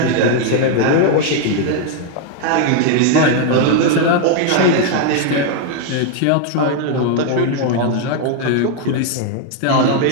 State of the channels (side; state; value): both; different; correlation 0.00